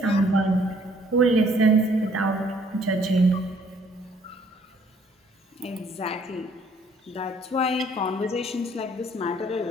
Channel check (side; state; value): both; normal; correlation 0.62